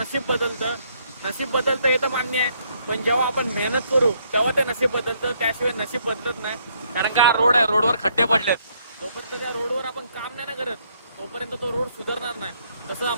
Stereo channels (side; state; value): both; inverted; correlation -0.70